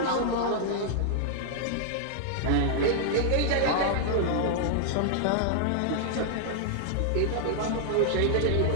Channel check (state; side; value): different; both; correlation -0.01